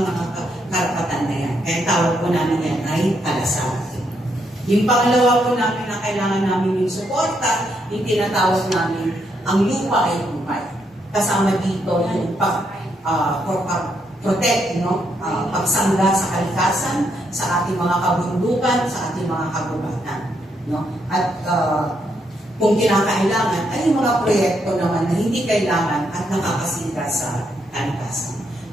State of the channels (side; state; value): both; normal; correlation 0.77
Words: mga karapatan na yan. Kaya tawag po namin yan ay kalasat. Yung pangalawa po namin na kailangan namin yung suporta, yung tinatawag namin ang lupa ay lupa. Kasama dito yung protect, no? Pagsangga sa kalikasan, sa ating mga kabundukan, sa ating mga kagubatan. No? At kung kinakailangan, ay yung mga proyekto naman na hindi kailangan at nakakasira sa kalikasan.